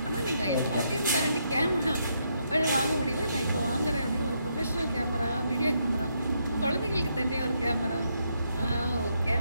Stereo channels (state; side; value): inverted; both; correlation -0.77